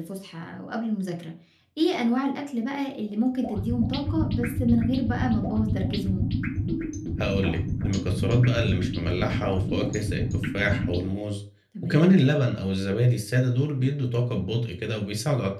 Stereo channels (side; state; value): both; identical; correlation 1.00